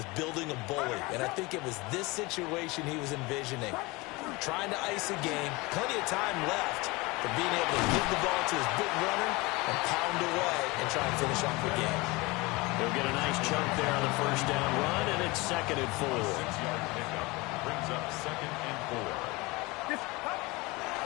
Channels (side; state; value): right; quieter; 23.7 dB